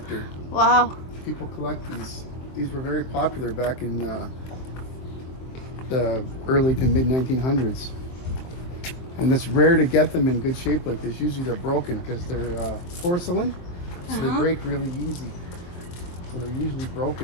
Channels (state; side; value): late; right; 23 ms